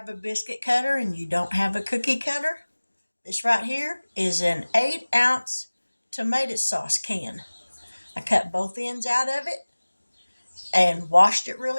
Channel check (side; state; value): both; inverted; correlation -1.00